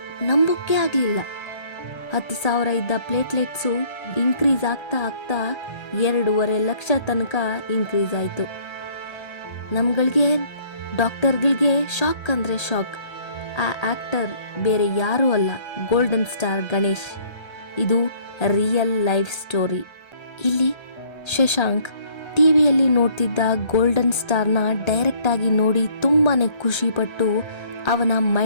ನಂಬೋಕೆ ಆಗ್ಲಿಲ್ಲ. 10,000 ಇದ್ದ ಪ್ಲೇಟ್ಲೆಟ್ಸು ಇನ್ಕ್ರೀಸ್ ಆಗ್ತಾ 2.5 ಲಕ್ಷ ತನಕ ಇನ್ಕ್ರೀಸ್ ಆಯ್ತು. ನಮ್ಗಳಿಗೆ, ಡಾಕ್ಟರ್ಗಳಿಗೆ ಶಾಕ್ ಅಂದ್ರೆ ಶಾಕ್. ಆ ಆಕ್ಟರ್ ಬೇರೆ ಯಾರೂ ಅಲ್ಲ, ಗೋಲ್ಡನ್ ಸ್ಟಾರ್ ಗಣೇಶ್. ಇದು ರಿಯಲ್ ಲೈಫ್ ಸ್ಟೋರಿ. ಇಲ್ಲಿ ಶಶಾಂಕ್ ಟಿವಿಯಲ್ಲಿ ನೋಡ್ತಿದ್ದ ಗೋಲ್ಡನ್ ಸ್ಟಾರ್ನ ಡೈರೆಕ್ಟ್ ಆಗಿ ನೋಡಿ ತುಂಬಾನೇ ಖುಷಿ ಪಟ್ಟು ಅವನ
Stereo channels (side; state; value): right; late; 1.3 ms